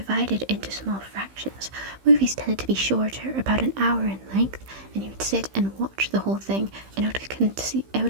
into small fractions. Movies tended to be shorter, about an hour in length, and you would sit and watch the whole thing, and it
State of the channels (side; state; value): left; late; 15 ms